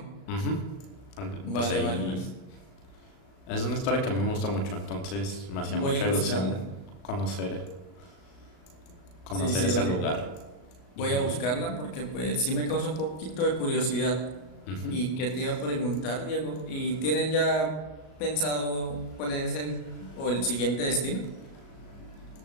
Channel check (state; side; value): late; right; 35 ms